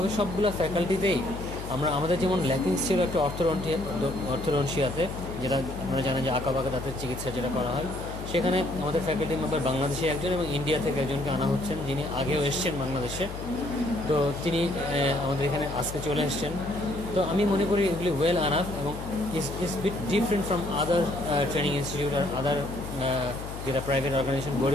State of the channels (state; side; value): noise; left; hum, 9 dB below the sound